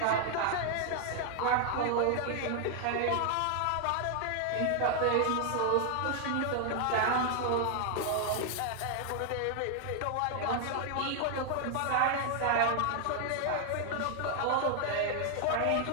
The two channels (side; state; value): both; different; correlation 0.00